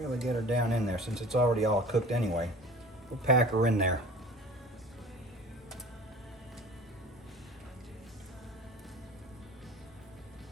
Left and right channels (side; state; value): both; normal; correlation 0.41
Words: get her down in there since it's already all cooked anyway. We'll pack her in there.